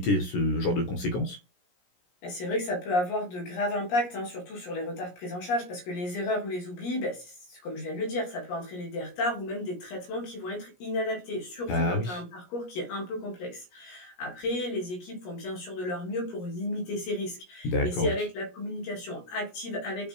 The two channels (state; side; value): late; right; 17 ms